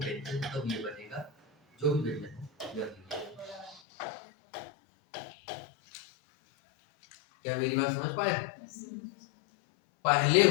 तब ये बनेगा जो भी व्यंजन हो। क्या मेरी बात समझ पाए? पहले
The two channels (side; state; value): right; drops out; at 3.8 s